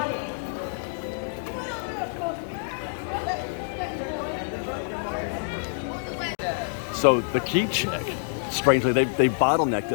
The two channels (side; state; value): right; silent; digital silence